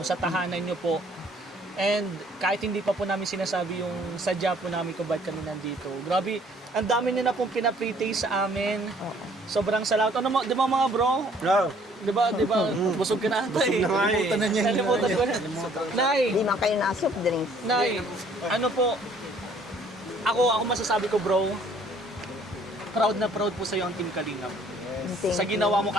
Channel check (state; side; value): normal; both; correlation 0.59